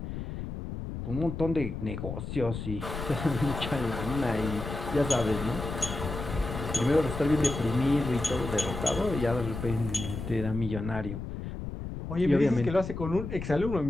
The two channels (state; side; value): noise; left; rumble, 7 dB below the sound